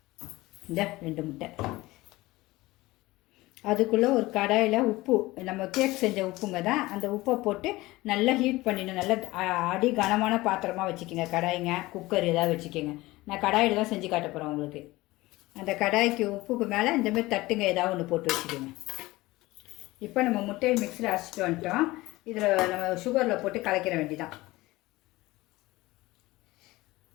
இந்த 2 முட்டை. அதுக்குள்ளே ஒரு கடாயில் உப்பு, நம்ம கேக் செஞ்ச உப்புங்க தான். அந்த உப்பை போட்டு நல்லா ஹீட் பண்ணிடணும். நல்லா அடி கனமான பாத்திரமாக வச்சுக்கோங்க. கடாய்ங்க, குக்கர் ஏதாவது வச்சுக்கோங்க. நான் கடாயில் தான் செஞ்சு காட்ட போகிறேன் உங்களுக்கு. அந்த கடாய்க்கு உப்புக்கு மேலே இந்தமாதிரி தட்டுங்க ஏதாவது ஒன்று போட்டு வச்சுக்கோங்க. இப்போ நம்ம முட்டையை மிக்ஸியில் அரைச்சிட்டு வந்துட்டோம். இதில் நம்ம சுகரில் போட்டு கலக்கிற வேண்டிதான்.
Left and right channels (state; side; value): quieter; right; 19.6 dB